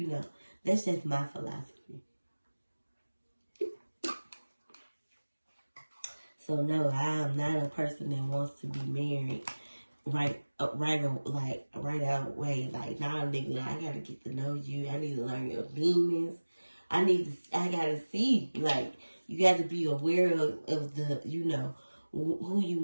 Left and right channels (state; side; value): inverted; both; correlation -1.00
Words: That's just my philosophy. So no, I am not a person that wants to be married right out way. Like, nah, nigga, I gotta get to know you. I need to learn your demons. I gotta see, like, you got to be aware of the, who you